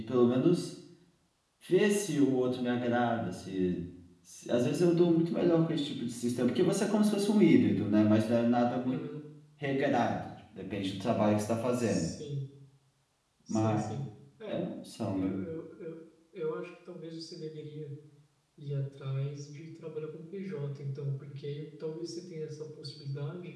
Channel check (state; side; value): identical; both; correlation 1.00